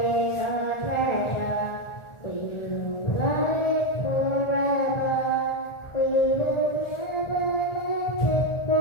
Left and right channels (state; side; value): late; right; 1.4 ms